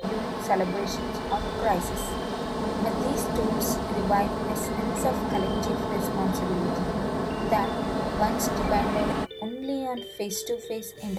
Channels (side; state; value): both; identical; correlation 1.00